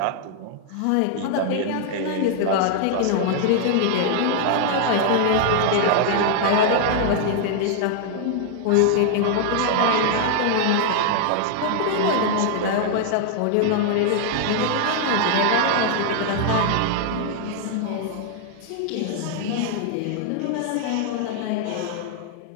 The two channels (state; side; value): different; both; correlation 0.00